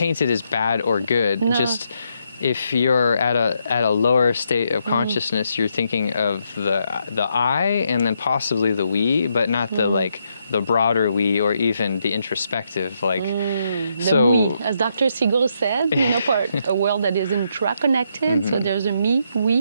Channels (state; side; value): inverted; both; correlation -0.78